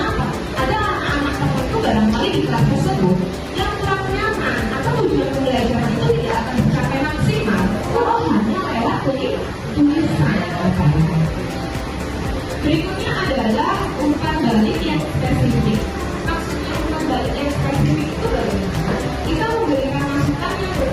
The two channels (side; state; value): both; identical; correlation 1.00